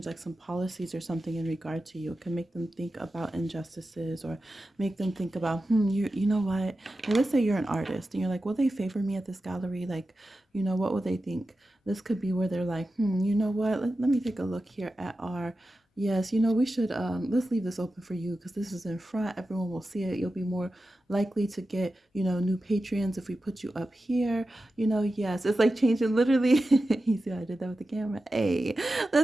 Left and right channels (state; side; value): normal; both; correlation 0.92